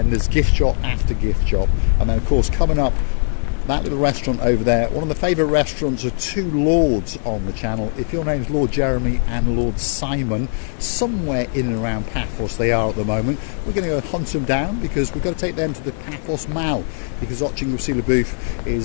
there's gift shop after gift shop, and then of course coming up that little restaurant over there, one of the favourite restaurants of two lords on the channel. If your name's Lord Jeremy and Lord Simon, somewhere in and around Paphos they are at the moment. We're going to go hunt them down, because we've got to take them to the Paphos Mall, because Oching Wasila Booth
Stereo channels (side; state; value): right; silent; 60 dB below the other